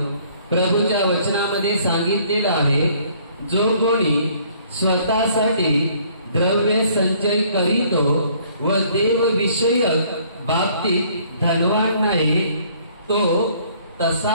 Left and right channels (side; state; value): both; inverted; correlation -0.60